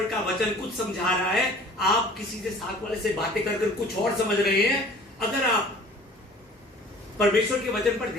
का वचन कुछ समझा रहा है, आप किसी से साथ वाले से बातें कर कुछ और समझ रहे हैं। अगर आप परमेश्वर के वचन पर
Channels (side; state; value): both; normal; correlation 0.48